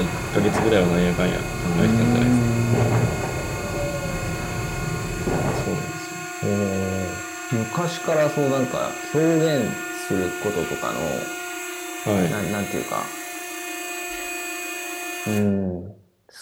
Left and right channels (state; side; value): identical; both; correlation 1.00